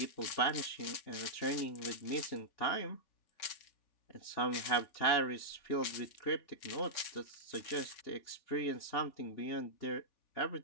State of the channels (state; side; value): late; right; 3.4 ms